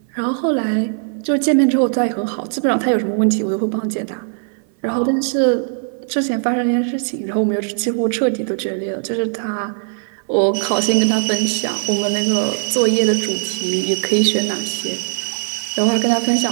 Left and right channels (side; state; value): left; silent; 58 dB below the other